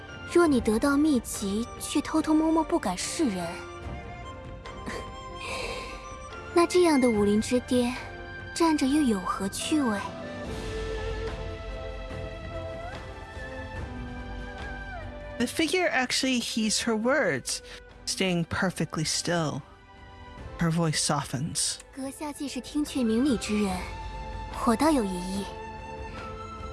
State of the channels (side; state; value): both; identical; correlation 1.00